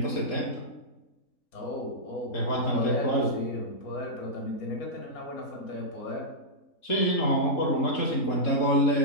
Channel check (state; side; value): late; right; 3.7 ms